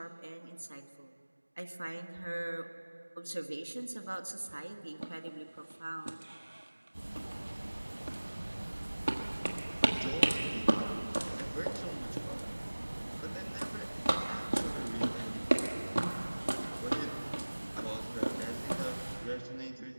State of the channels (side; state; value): both; inverted; correlation -1.00